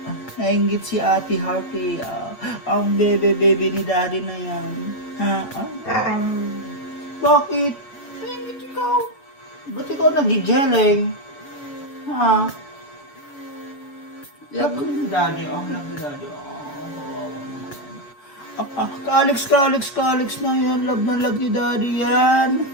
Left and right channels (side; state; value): right; late; 7.1 ms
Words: nainggit si Ate Harvey. Ang bebe-bebe ni Daddy na yan. Bakit? Nainggit ikaw. Ba't ikaw nagigeleng? Love ko ni Daddy. Love ni Daddy. Ka-Alex na yan. Love na love ni Daddy yan.